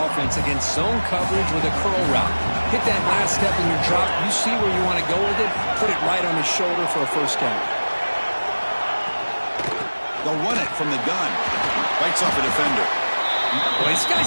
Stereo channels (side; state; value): both; inverted; correlation -1.00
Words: against zone coverage with a curl route. Hit that last step in your drop. You see where you want to go with it. Put it right on his shoulder for a 1st down. They'll run it from the gun. Bites off a defender. Well, this